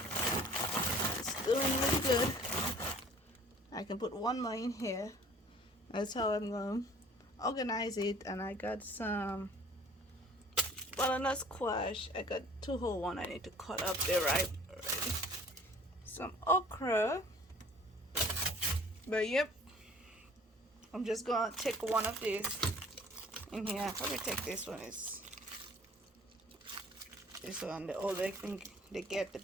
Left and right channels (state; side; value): normal; both; correlation 0.51